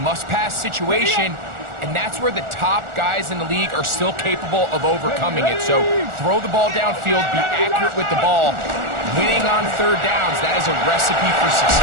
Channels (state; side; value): late; left; 1.4 ms